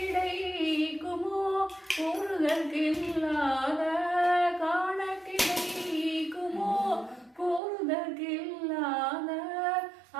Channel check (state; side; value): drops out; left; at 7.6 s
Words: கூறுதற்கில்லாத காண கிடைக்குமோ கூறுதற்கில்லாத